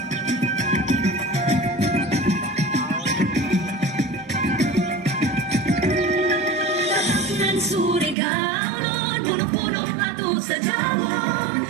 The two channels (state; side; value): drops out; left; at 8.2 s